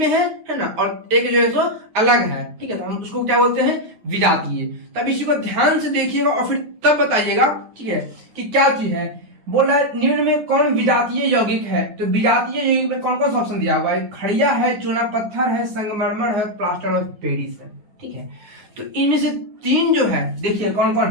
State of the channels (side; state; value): left; late; 9.5 ms